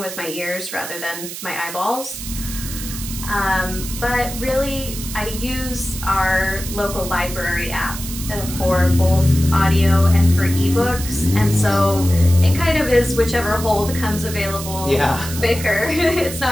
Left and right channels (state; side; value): noise; right; hiss, 9 dB below the sound